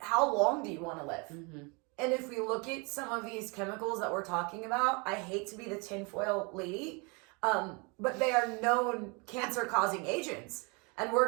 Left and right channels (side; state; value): left; quieter; 30.8 dB